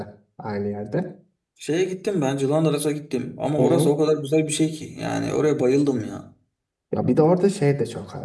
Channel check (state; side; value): identical; both; correlation 1.00